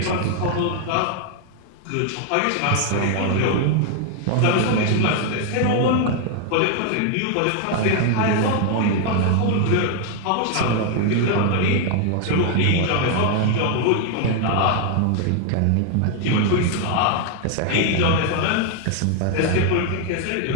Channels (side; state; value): both; different; correlation 0.00